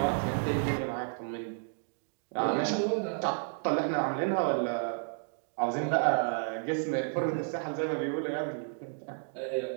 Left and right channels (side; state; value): left; silent; digital silence